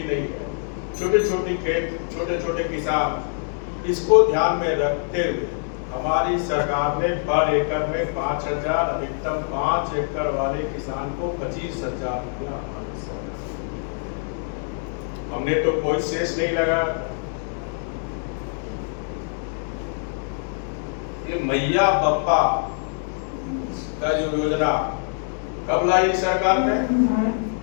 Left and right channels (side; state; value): right; silent; digital silence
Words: नहीं है, छोटे छोटे खेत, छोटे छोटे किसान। इसको ध्यान में रखते हुए हमारी सरकार ने पर एकड़ में 5,000, अधिकतम 5 एकड़ वाले किसान को 25,000 रुपया। हमने तो कोई शेष नहीं लगा। ये मैया बप्पा का जो योजना कब लाई सरकार ने?